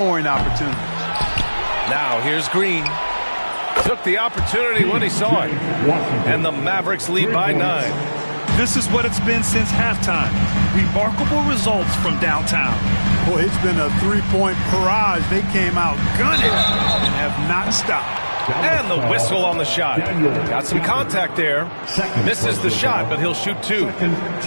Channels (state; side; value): inverted; both; correlation -1.00